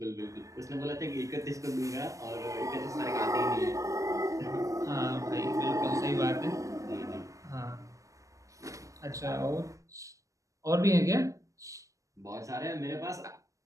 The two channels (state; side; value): late; left; 0.16 ms